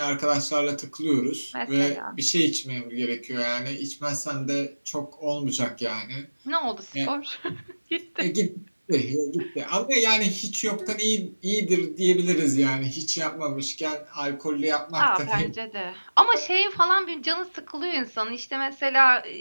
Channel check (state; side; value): inverted; both; correlation -1.00